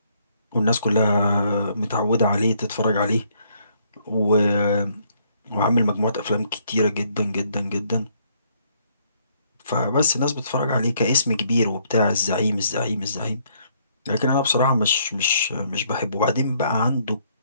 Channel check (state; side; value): inverted; both; correlation -0.68